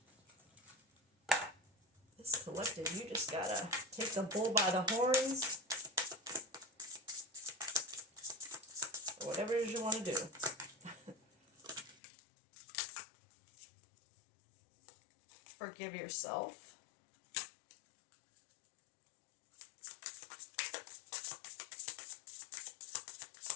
This collective, you just gotta take the bull by the horns, or whatever it is you want to do. Forgive yourself.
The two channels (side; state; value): right; drops out; at 12.0 s